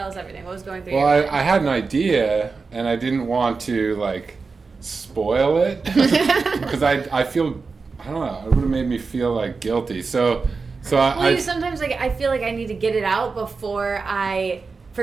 us everything. What was going through Well, your mind? I had an idea, and I didn't want to like spoil it because I feel, I don't know, it would have made me feel like guilty. So Well, you sometimes like I feel like I need to get it out before I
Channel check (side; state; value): left; quieter; 4.5 dB